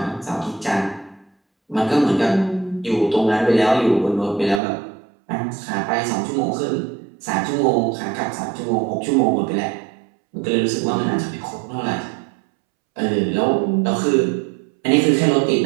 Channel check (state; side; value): drops out; left; at 4.6 s